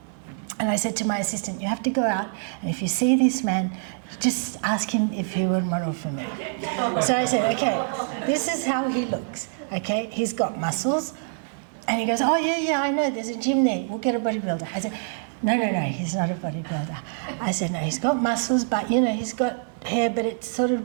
And I said to my assistant, "You have to go out, and if you see this man, just ask him if he would model for me." So I said, "Okay, this is how he looks. Okay, he's got muscles." And he goes, "Oh, yeah, I know, there's a gym there. We'll get a bodybuilder." I said, No, he's not a bodybuilder. I said, "No, he's got muscles, but, he's got hair, but it's sort of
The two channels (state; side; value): silent; left; 57 dB below the other